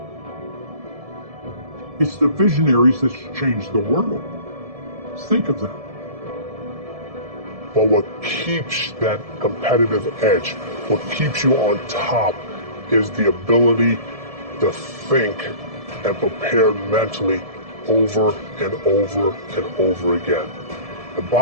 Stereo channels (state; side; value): late; left; 1.7 ms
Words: It's the visionaries that changed the world. Think of them. But what keeps that competitive edge, what keeps you on top, is the ability to think and prepare mentally over and over and over again. The